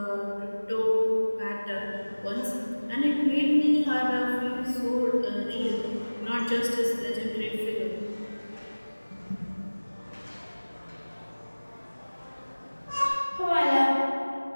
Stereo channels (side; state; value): both; inverted; correlation -1.00